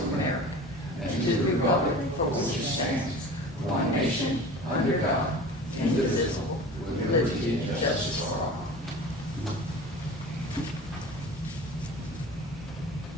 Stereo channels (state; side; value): normal; both; correlation 0.37